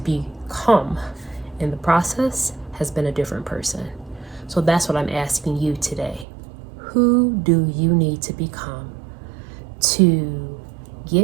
in the process has been a different person. So that's what I'm asking you today. Who do you need to become to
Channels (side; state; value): left; drops out; at 6.2 s